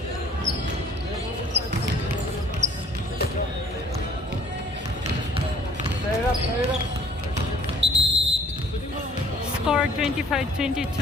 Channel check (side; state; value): both; normal; correlation 0.53